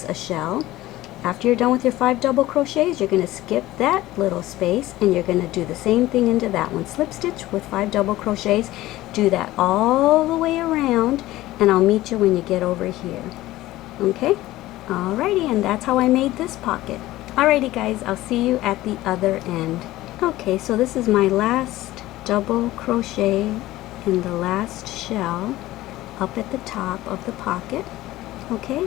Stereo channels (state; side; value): quieter; right; 16.6 dB